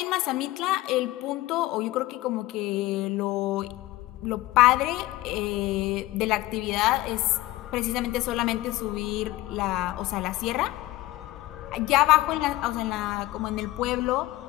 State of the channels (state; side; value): quieter; right; 17.8 dB